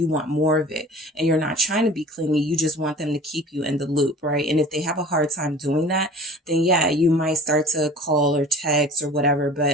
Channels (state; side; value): normal; both; correlation 0.43